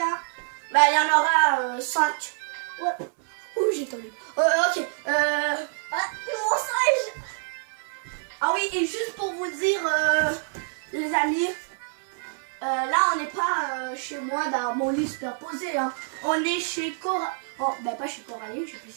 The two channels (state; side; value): silent; left; 61 dB below the other